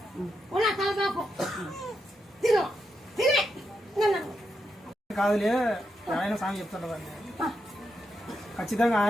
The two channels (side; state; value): both; normal; correlation 0.84